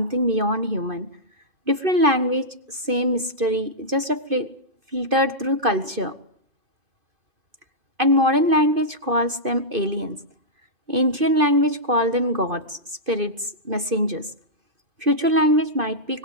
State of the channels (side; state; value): left; late; 2.5 ms